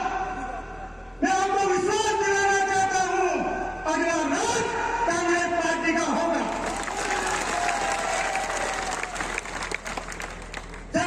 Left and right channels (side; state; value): both; identical; correlation 1.00